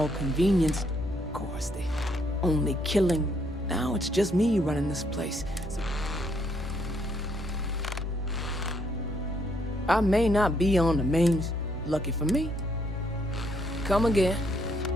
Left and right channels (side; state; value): both; normal; correlation 0.72